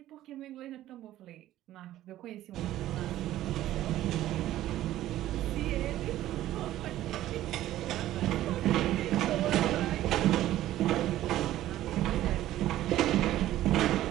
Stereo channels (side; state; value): left; quieter; 14.0 dB